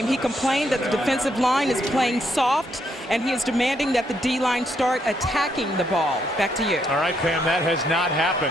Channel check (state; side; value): normal; both; correlation 0.75